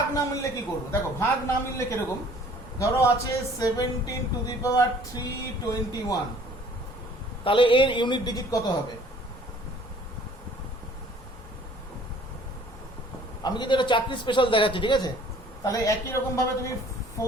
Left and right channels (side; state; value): both; normal; correlation 0.54